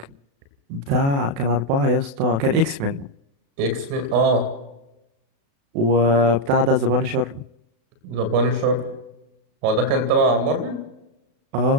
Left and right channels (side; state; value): left; late; 36 ms